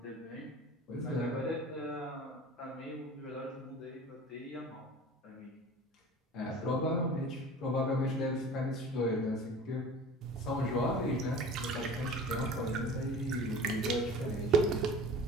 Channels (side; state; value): both; normal; correlation 0.40